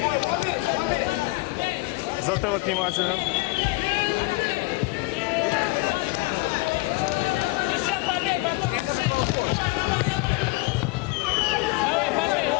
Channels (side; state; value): right; quieter; 22.4 dB